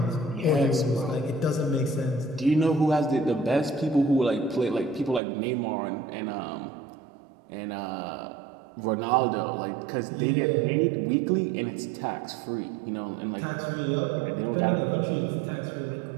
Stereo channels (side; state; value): left; drops out; at 5.2 s